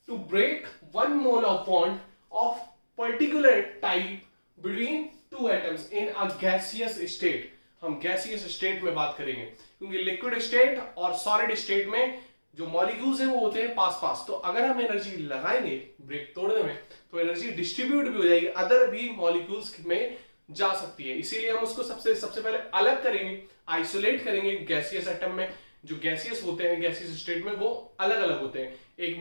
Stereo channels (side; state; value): both; inverted; correlation -1.00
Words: to break 1 mole of bond of particular type between 2 atoms in a gaseous state. हम गैसियस स्टेट में बात करेंगे, क्योंकि लिक्विड स्टेट और सॉलिड स्टेट में जो मॉलिक्यूल्स हैं वो होते हैं पास पास। तो अगर हम एनर्जी लगाएंगे ब्रेक तोड़ने में, तो एनर्जी डिस्ट्रीब्यूट भी हो जाएगी, अदर भी मॉलिक्यूल्स में जा सकती है। इसीलिए हम उसको सबसे पहले अलग करेंगे, आइसोलेट करेंगे गैसियस एटम में, जो गैसियस होते हैं गैसियस स्टेट में वो अलग अलग होते हैं, एक